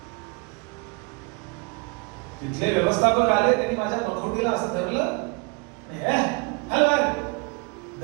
तिथले व्यवस्थापक आले, त्यांनी माझ्या नखोटीला असं धरलं,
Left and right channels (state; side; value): quieter; left; 30.9 dB